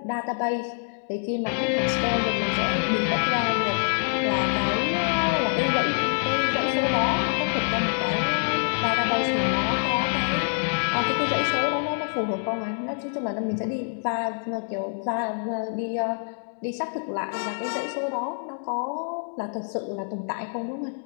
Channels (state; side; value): silent; right; digital silence